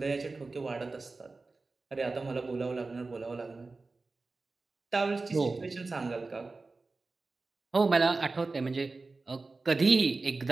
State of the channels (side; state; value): left; quieter; 3.7 dB